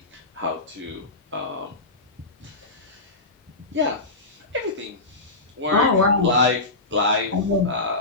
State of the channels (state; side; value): quieter; right; 3.1 dB